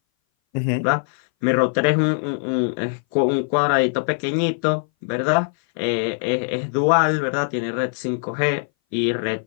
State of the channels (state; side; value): silent; right; 60 dB below the other